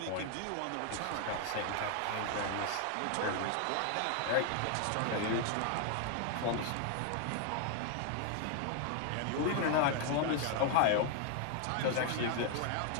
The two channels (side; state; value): both; different; correlation 0.00